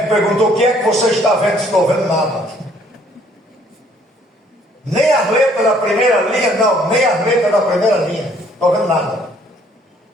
perguntou: o que é que você está vendo? Estou vendo nada. Nem as letras da primeira linha, não, nem as letras da primeira linha. Estou vendo nada.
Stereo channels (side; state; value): both; normal; correlation 0.62